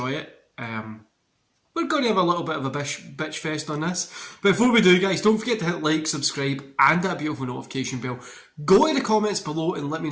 it. We're going to have a little bit of a bitch fest on this. But before we do, guys, don't forget to hit like, subscribe, and that beautiful notification bell. Go in the comments below and let me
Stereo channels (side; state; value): both; identical; correlation 1.00